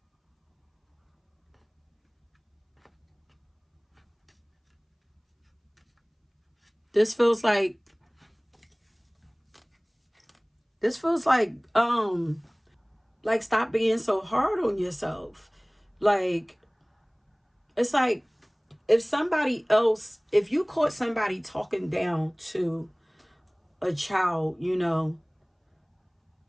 This feels like stop being so hard on yourself. Like, it's like, if you caught somebody talking down to a child, you know,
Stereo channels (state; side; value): identical; both; correlation 1.00